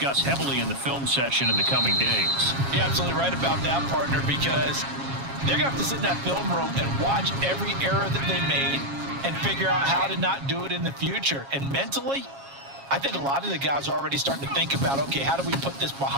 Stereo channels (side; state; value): left; late; 7.3 ms